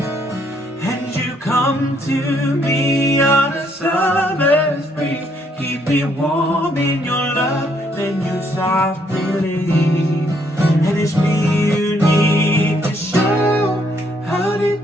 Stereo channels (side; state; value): both; normal; correlation 0.70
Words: And you come to me on a summer's breeze, keep me warm in your love, then you softly leave. And it's me you need to show how